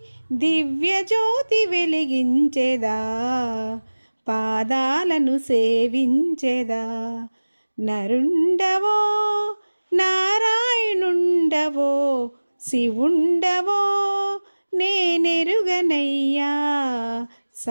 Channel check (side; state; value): both; inverted; correlation -1.00